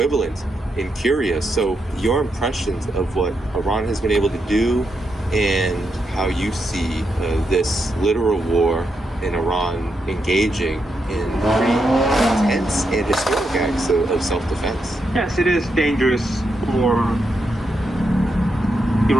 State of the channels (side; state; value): both; normal; correlation 0.83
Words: in Syria. So your impressions of what Iran has been able to do and how you see this literal war in Iran engaging in pretty intense and historic acts of self-defense. Yes, it is dangerous for